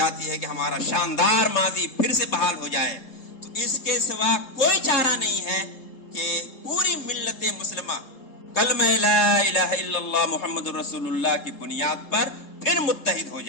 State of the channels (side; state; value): right; late; 3.7 ms